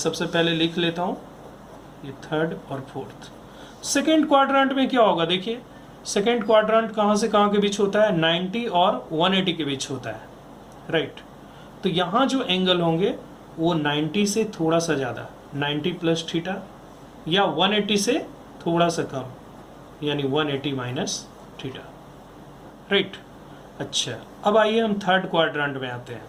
पहले लिख लेता हूं ये थर्ड और फोर्थ। सेकेंड क्वाड्रेंट में क्या होगा, देखिए सेकेंड क्वाड्रेंट कहां से कहां के बीच होता है, 90 और 180 के बीच होता है, राइट। तो यहां जो एंगल होंगे वो 90 से थोड़ा सा ज्यादा, 90 प्लस थीटा, या 180 से थोड़ा सा कम, यानी 180 माइनस थीटा, राइट। अच्छा, अब आइए हम थर्ड क्वाड्रेंट में आते हैं।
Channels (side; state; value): both; identical; correlation 1.00